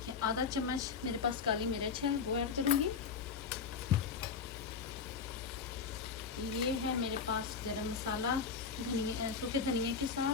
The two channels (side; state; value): right; quieter; 5.6 dB